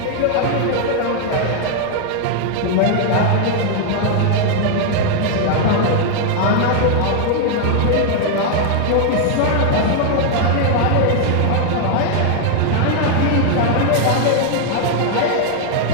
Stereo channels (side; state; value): both; different; correlation 0.00